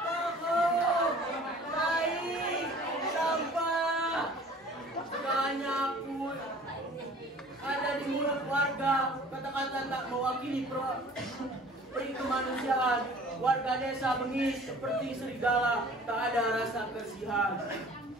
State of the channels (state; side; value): normal; both; correlation 0.48